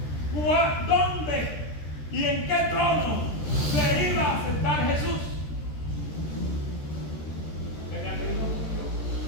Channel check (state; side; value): late; right; 13 ms